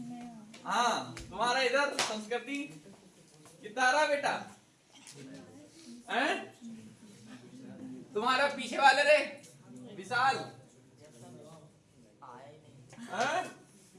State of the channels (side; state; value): both; identical; correlation 1.00